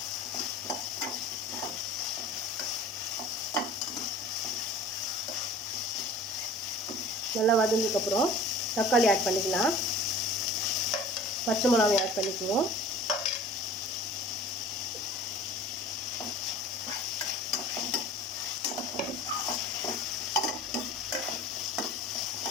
நல்லா வதங்கினதுக்கப்புறம் தக்காளி ஆட் பண்ணிக்கலாம். பச்சை மிளகாய் ஆட் பண்ணிக்குவோம்.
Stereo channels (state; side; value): normal; both; correlation 0.43